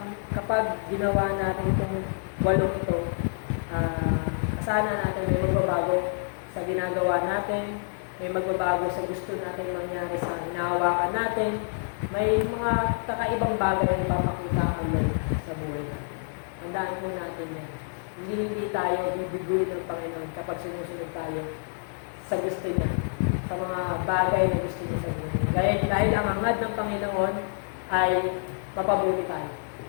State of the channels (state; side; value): silent; right; digital silence